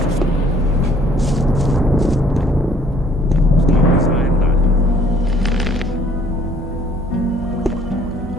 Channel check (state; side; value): normal; both; correlation 0.60